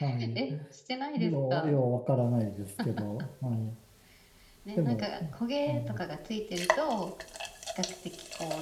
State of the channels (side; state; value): both; identical; correlation 1.00